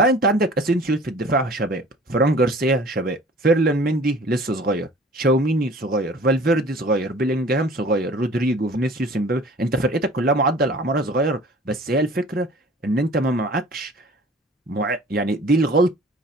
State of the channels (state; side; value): normal; both; correlation 0.47